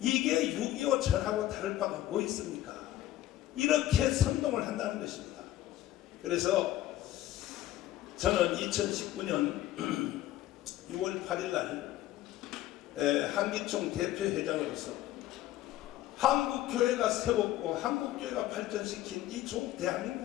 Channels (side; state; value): right; quieter; 14.2 dB